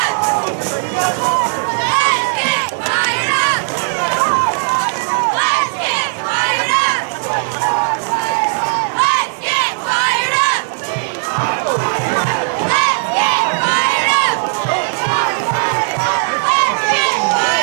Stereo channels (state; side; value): silent; left; digital silence